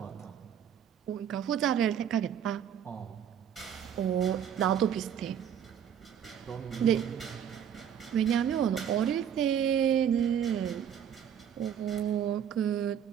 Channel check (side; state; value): left; quieter; 9.0 dB